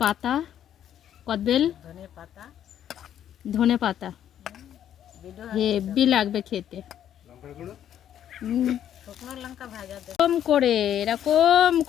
পাতা, কদবেল, ধনে পাতা। হেভি লাগবে খেতে। এরকম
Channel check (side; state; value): right; quieter; 10.3 dB